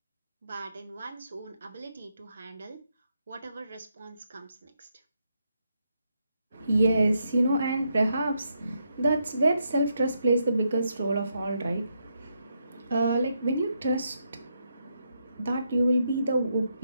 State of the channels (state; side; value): inverted; both; correlation -0.80